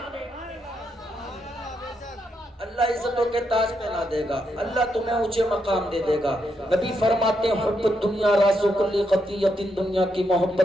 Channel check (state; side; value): normal; both; correlation 0.80